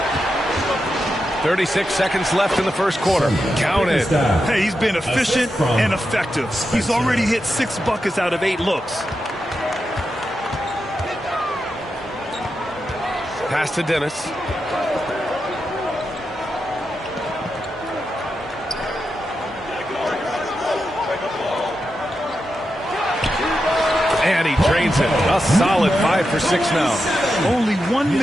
36 seconds left in the first quarter. Count it. Hey, he's been efficient and effective. He's already hit 6 buckets out of 8 looks. Pass to Dennis. And he drains it. A solid 5 for 6 now. Only 1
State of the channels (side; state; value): both; normal; correlation 0.88